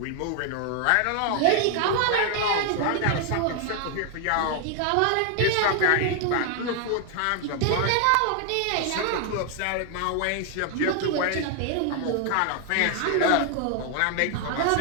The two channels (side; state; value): both; different; correlation 0.00